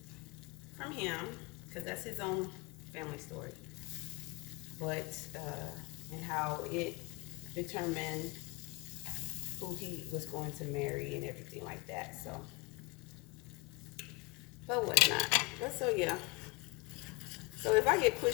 from him because that's his own family story. But and how it determined who he was going to marry and everything like that. So, but whatnot. But so yeah. So if I get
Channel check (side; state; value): right; quieter; 26.1 dB